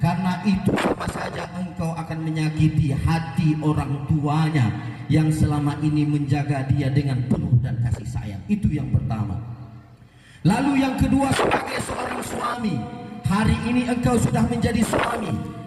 itu sama saja engkau akan menyakiti hati orang tuanya yang selama ini menjaga dia dengan penuh dan kasih sayang. Itu yang pertama. Lalu yang kedua, sebagai seorang suami, hari ini engkau sudah menjadi suami.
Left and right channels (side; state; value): both; identical; correlation 1.00